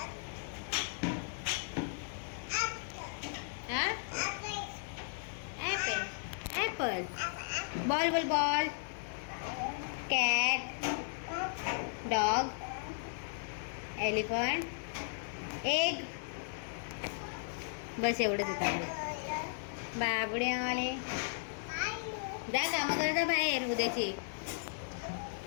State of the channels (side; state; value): right; silent; digital silence